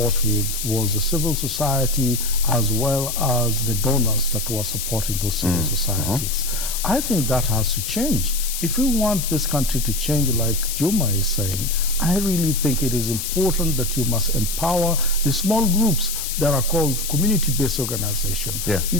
with was the civil society as well as the donors that were supporting those civil societies. I think that has to change. If we want this country to change, like Juma is saying, I really think it is important that you must empower the small groups that are called community-based organizations. Yeah. You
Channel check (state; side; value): noise; left; hiss, 4 dB below the sound